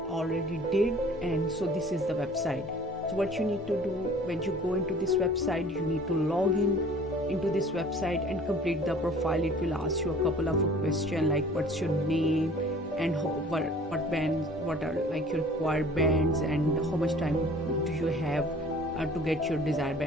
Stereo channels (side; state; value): both; normal; correlation 0.49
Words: did, and so this is the website. So what you need to do when you go into this website, you need to log in into this website and complete the profile. It will ask you a couple of questions like what's your name and what bands, what are like your required bands, and how much time do you have to get your desired